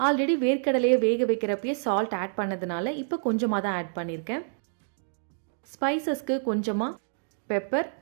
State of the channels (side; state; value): left; silent; digital silence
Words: ஆல்ரெடி வேர்க்கடலையை வேக வைக்கிறப்பயே சால்ட் ஆட் பண்ணதுனால இப்போ கொஞ்சமாக தான் ஆட் பண்ணியிருக்கேன். ஸ்பைசஸ்க்கு கொஞ்சமாக பெப்பர்,